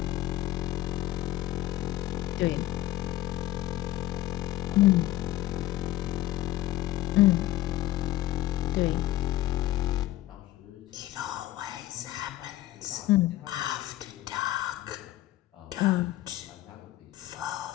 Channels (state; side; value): quieter; right; 15.3 dB